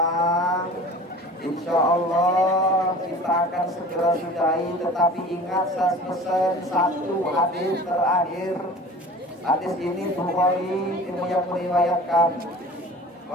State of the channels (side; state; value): both; normal; correlation 0.41